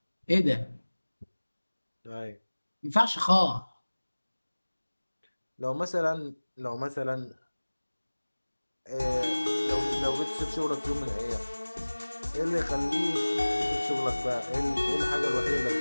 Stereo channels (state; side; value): inverted; both; correlation -1.00